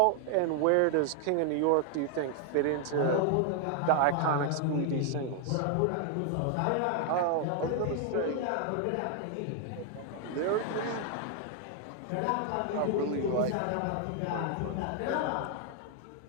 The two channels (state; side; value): different; both; correlation 0.00